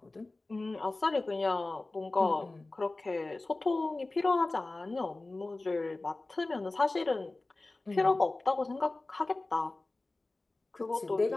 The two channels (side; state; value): right; quieter; 3.1 dB